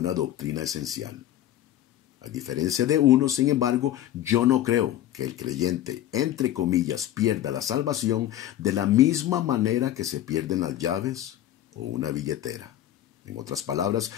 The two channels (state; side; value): quieter; right; 12.6 dB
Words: doctrina esencial. A diferencia de uno, sin embargo, yo no creo que el creyente, entre comillas, pierda la salvación de la misma manera que se pierden las llaves o una billetera. En otras palabras,